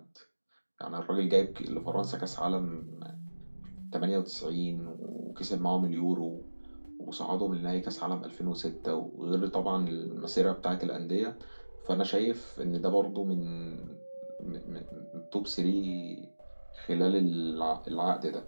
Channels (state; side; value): inverted; both; correlation -1.00